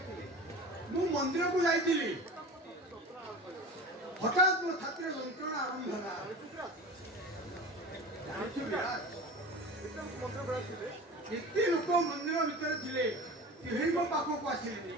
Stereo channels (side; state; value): both; normal; correlation 0.35